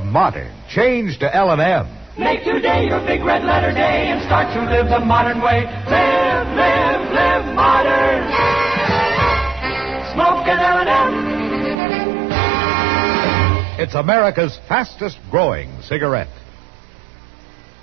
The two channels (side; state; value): left; drops out; at 11.8 s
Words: modern, change to L&M. Make today your big red letter day and start to live the modern way. Live, live, live modern. Smoke an L&M. It's America's fastest growing cigarette.